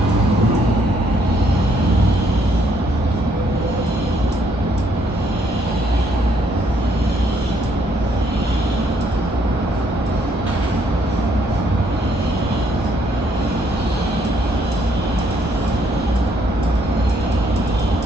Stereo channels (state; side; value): normal; both; correlation 0.69